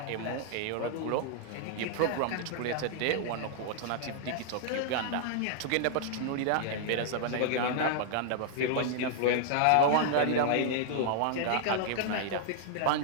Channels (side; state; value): both; different; correlation 0.00